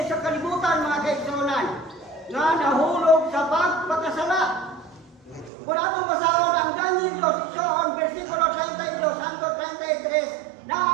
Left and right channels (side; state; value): left; drops out; at 5.5 s